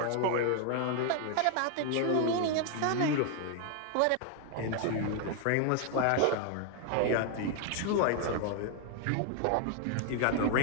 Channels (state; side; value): different; both; correlation 0.00